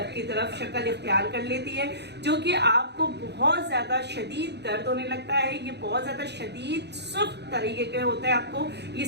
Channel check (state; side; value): late; left; 0.49 ms